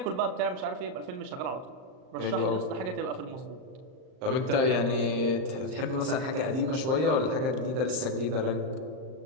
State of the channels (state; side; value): late; left; 38 ms